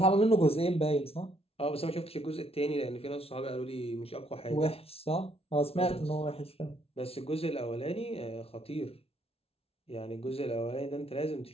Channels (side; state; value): right; late; 0.28 ms